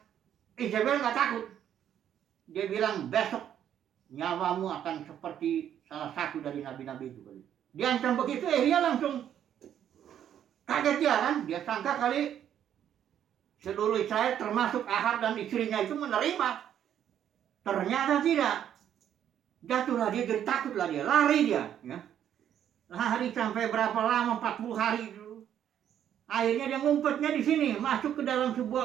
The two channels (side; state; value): left; quieter; 10.0 dB